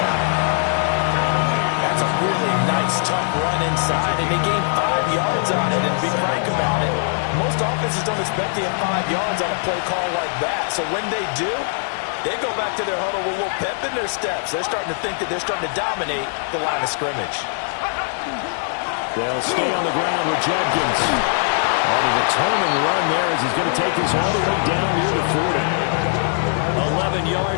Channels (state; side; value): silent; right; digital silence